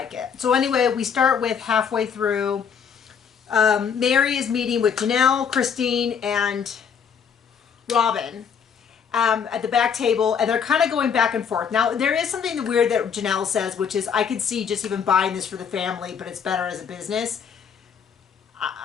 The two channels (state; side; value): quieter; right; 7.1 dB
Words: it. So anyway, we start with halfway through. Mary is meeting with Janelle, Christine, and Robin at the back table, and they're kind of going back and forth. Now, there is something weird that Janelle says, which is, I could see just even buying this for the family, but it's better as a business.